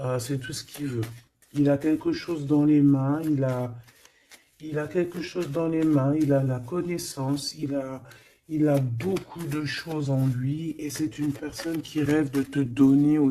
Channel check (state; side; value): identical; both; correlation 1.00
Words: C'est tout ce qu'il veut. Il a quelque chose dans les mains. Il a quelque chose dans les mains. Il a la connaissance. Il a beaucoup de choses en lui et c'est une personne qui rêve de te donner